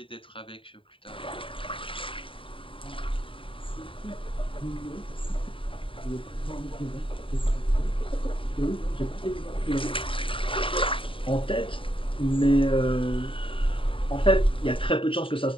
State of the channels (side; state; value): right; late; 0.25 ms